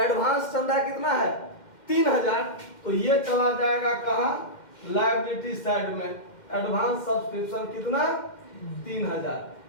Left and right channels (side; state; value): right; late; 2.1 ms